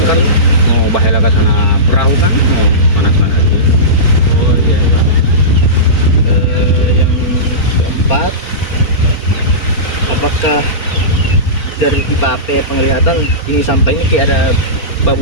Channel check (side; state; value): right; late; 4.4 ms